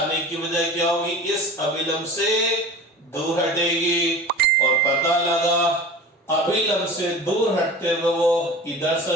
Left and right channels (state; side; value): normal; both; correlation 0.37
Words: की वजह क्या होगी, इस अभिलंब से दूर हटेगी, और पता लगा अभिलंब से दूर हटते हुए वो इधर